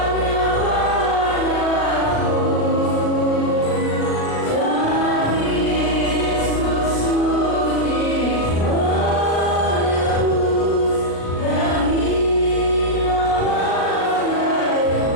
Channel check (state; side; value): late; right; 37 ms